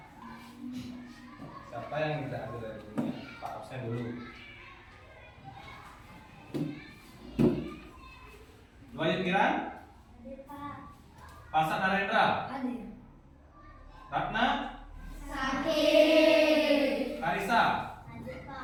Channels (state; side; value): identical; both; correlation 1.00